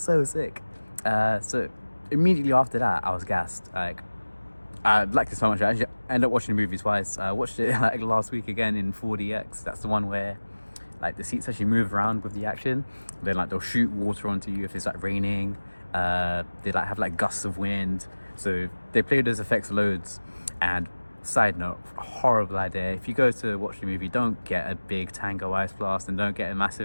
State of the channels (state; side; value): inverted; both; correlation -1.00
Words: sick. So immediately after that, I was gassed. Like, I liked it so much. I actually ended up watching the movie twice. I watched it like last week again in 4DX. That's the one where like the seats actually move around with the action. Then like they'll shoot water onto you if it's like raining. They like have like gusts of wind. So they play those effects loads. And side note, horrible idea. If you go to watch the movie, don't get a big Tango Ice Blast, and don't get a